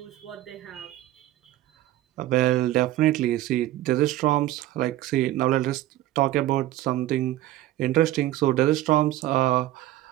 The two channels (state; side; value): quieter; left; 15.1 dB